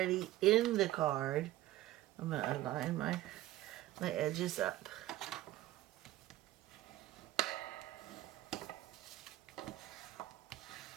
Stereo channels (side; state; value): left; quieter; 15.3 dB